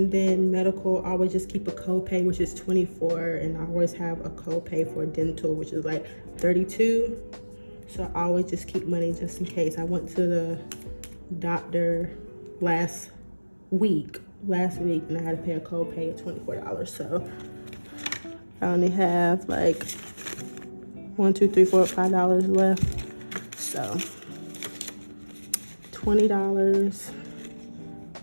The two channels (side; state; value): both; inverted; correlation -1.00